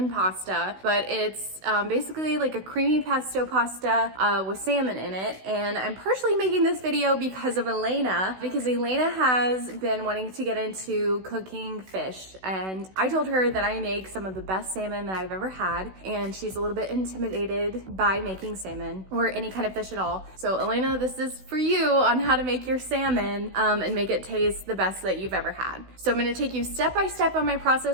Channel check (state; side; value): late; left; 16 ms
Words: pasta, but it's basically like a creamy pesto pasta with salmon in it. And I'm partially making this video because of Elaina, because Elaina has been wanting to get into cooking fish. And I told her that I make some of the best salmon that I've ever had, and she's a little bit intimidated by making salmon or any kind of fish at all. So Elaina, this is for you on how to make your salmon and make it taste the best that you've ever had. So I'm gonna take you step by step on my